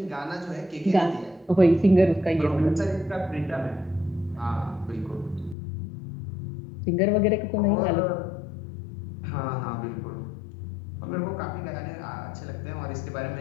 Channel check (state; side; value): drops out; right; at 5.6 s